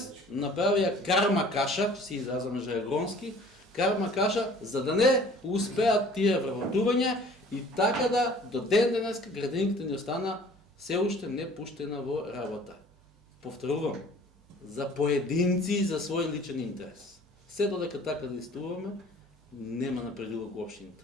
направија карма каша, си изразаме жаргонски, карма каша, за да не успеат тие вработувања и така да до ден денеска градинката ни остана се уште не пуштена во работа. Повторувам, за поединци за свој личен интерес. Се додека така действуваме, нема напредувок во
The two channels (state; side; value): normal; both; correlation 0.50